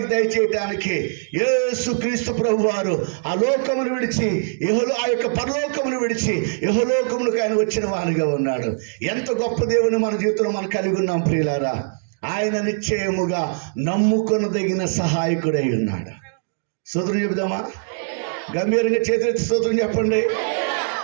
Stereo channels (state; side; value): silent; left; digital silence